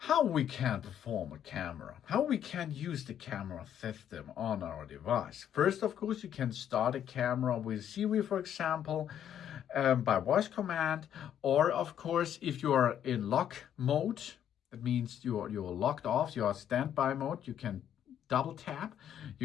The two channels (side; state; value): right; quieter; 9.9 dB